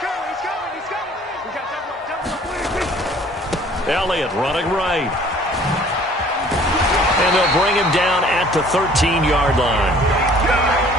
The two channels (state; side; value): normal; both; correlation 0.53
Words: Elliott running right. And they'll bring him down at the 13-yard line.